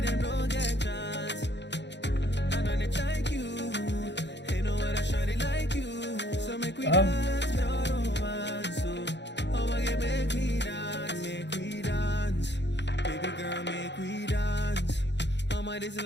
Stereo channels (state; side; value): late; right; 0.51 ms